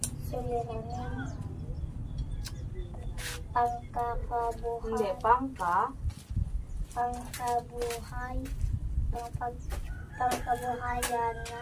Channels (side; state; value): both; identical; correlation 1.00